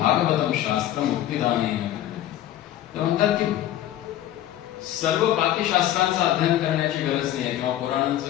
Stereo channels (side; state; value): right; quieter; 12.8 dB